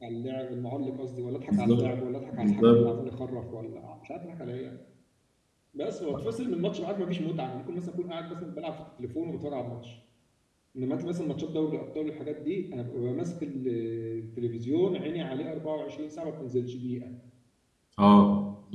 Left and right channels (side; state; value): both; identical; correlation 1.00